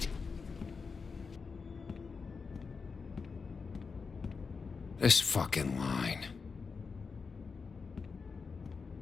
This fucking line.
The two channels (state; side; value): quieter; right; 5.0 dB